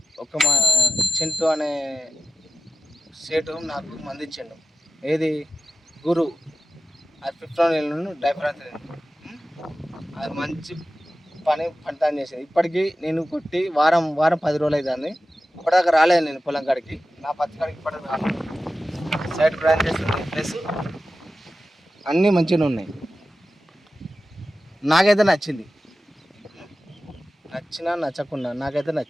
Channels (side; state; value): both; normal; correlation 0.93